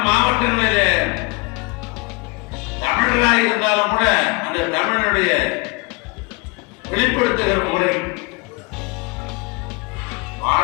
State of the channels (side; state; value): right; quieter; 28.5 dB